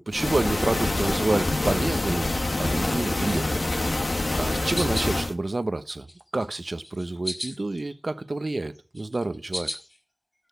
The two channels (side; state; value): both; normal; correlation 0.97